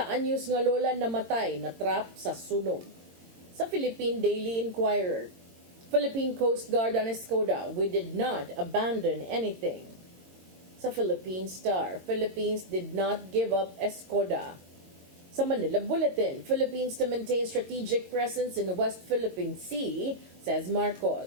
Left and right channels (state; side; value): late; left; 22 ms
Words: anyos nga lola namatay na trap sa sunog. Sa Philippine Daily Inquirer, Philippine Coast Guard on Escoda, we did not abandon anything. Sa Philippine Star, Philippines did not give up Escoda. Sa Manila Bulletin, Philippines to maintain strategic presence in the West Philippine Sea, says